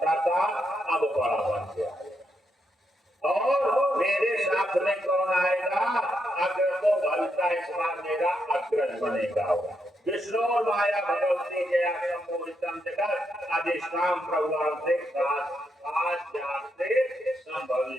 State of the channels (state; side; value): normal; both; correlation 0.81